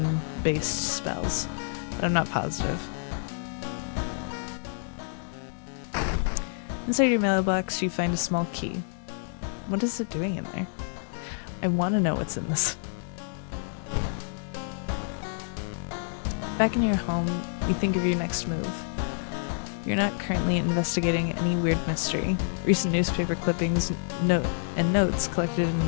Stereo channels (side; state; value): right; silent; 59 dB below the other